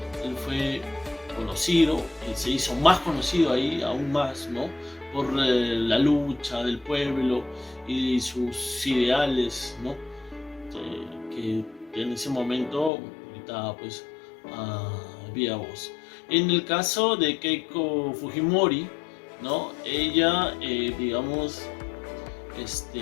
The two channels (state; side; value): drops out; right; at 12.9 s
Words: Él fue conocido, se hizo más conocido ahí, aún más, ¿no?, por la lucha del pueblo y sus ideales, ¿no?, que en ese momento gritaba pues a viva voz. En el caso de Keiko Fujimori, ¿no?, ella, digamos,